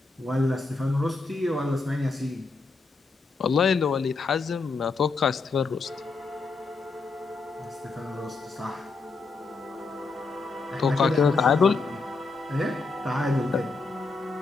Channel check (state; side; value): quieter; right; 4.0 dB